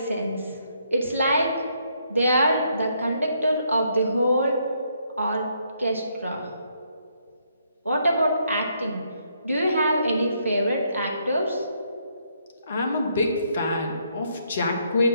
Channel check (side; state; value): both; inverted; correlation -0.73